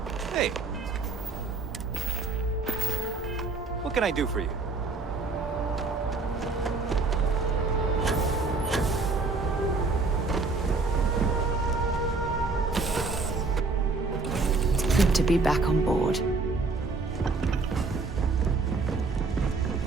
Hey. What can I do for you? It's good to be back on board.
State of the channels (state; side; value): quieter; left; 3.9 dB